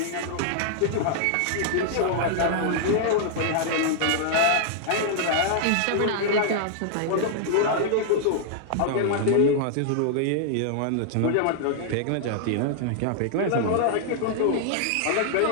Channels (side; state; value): both; different; correlation -0.01